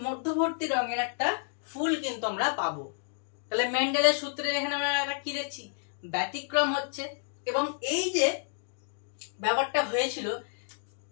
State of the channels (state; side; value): silent; right; digital silence